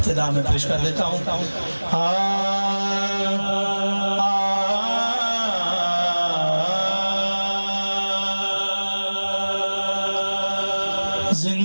में पेश कर देता हूँ।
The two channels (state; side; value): inverted; both; correlation -1.00